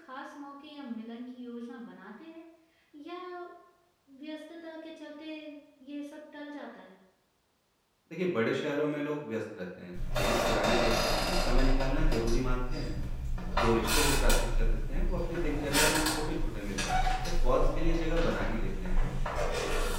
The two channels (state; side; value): identical; both; correlation 1.00